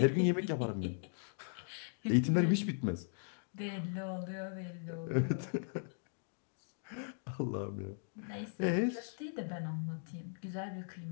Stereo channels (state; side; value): silent; right; digital silence